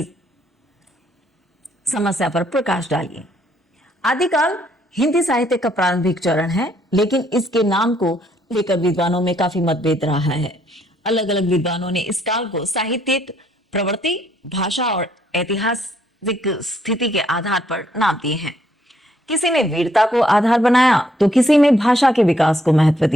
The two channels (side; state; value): both; normal; correlation 0.69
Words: समस्या पर प्रकाश डालिए। आदिकाल हिंदी साहित्य का प्रारंभिक चरण है, लेकिन इसके नाम को लेकर विद्वानों में काफी मतभेद रहा है। अलग अलग विद्वानों ने इस काल को साहित्यिक प्रवृत्ति, भाषा और ऐतिहासिक स्थिति के आधार पर नाम दिए हैं। किसी ने वीरता को आधार बनाया तो किसी ने भाषा के विकास को महत्व